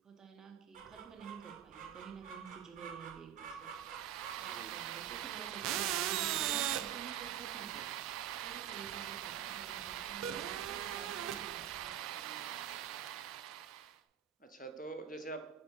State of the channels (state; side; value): quieter; left; 10.2 dB